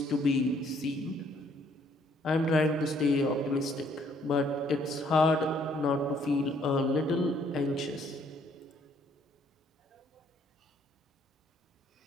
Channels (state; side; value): normal; both; correlation 0.65